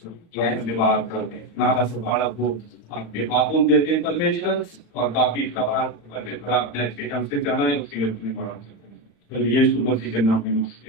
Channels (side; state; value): right; late; 35 ms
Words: धन्यवाद करते हैं। नारा से बड़ा को आपके बातों में देते हैं परमेश्वर, और बाकी सवाल परमेश्वर आपने अच्छे ढंग से जाना है, उसके लिए धन्यवाद करते हैं। यीशु मसीह के नाम में